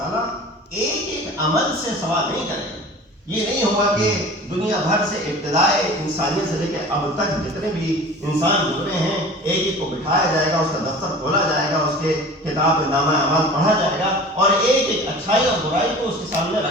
ایک ایک عمل سے سوال نہیں کرے گا۔ یہ نہیں ہوگا کہ دنیا بھر سے ابتدائے انسانیت سے لے کے اب تک جتنے بھی انسان گزرے ہیں ایک ایک کو بٹھایا جائے گا، اس کا دفتر کھولا جائے گا، اس کے کتاب نامہ اعمال پڑھا جائے گا اور ایک ایک اچھائی اور برائی کو اس کے سامنے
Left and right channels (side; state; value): both; normal; correlation 0.40